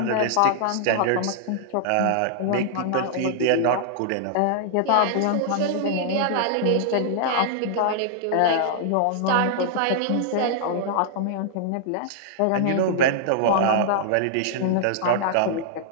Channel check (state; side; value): different; both; correlation -0.01